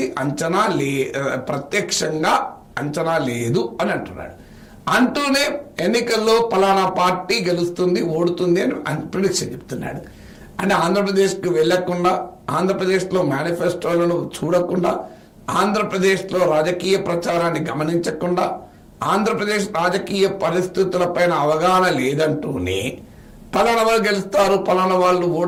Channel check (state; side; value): identical; both; correlation 1.00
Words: ప్రత్యక్షంగా అంచనా లేదు అని అంటున్నాడు. అంటూనే ఎన్నికల్లో పలానా పార్టీ గెలుస్తుంది, ఓడుతుంది అని ప్రిడిక్షన్ చెప్తున్నాడు. అంటే ఆంధ్రప్రదేశ్కి వెళ్లకుండా, ఆంధ్రప్రదేశ్లో మేనిఫెస్టోలను చూడకుండా, ఆంధ్రప్రదేశ్లో రాజకీయ ప్రచారాన్ని గమనించకుండా, ఆంధ్రప్రదేశ్ రాజకీయ పరిస్థితులపైన అవగాహన లేదంటూనే పలానా వాళ్ళు గెలుస్తారు, పలానా వాళ్ళు